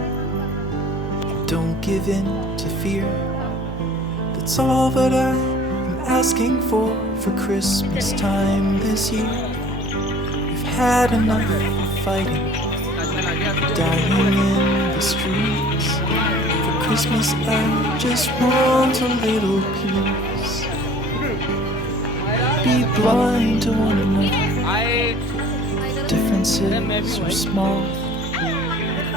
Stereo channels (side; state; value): both; normal; correlation 0.49